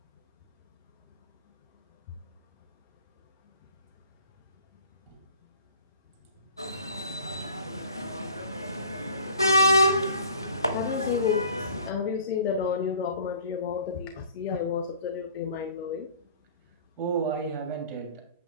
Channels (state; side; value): inverted; both; correlation -0.49